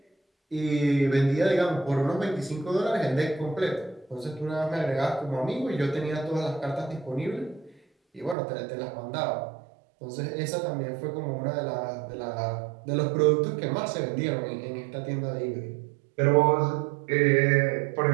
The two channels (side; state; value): left; drops out; at 8.3 s